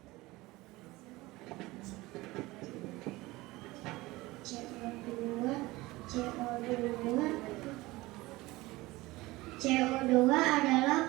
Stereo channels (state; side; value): quieter; left; 20.1 dB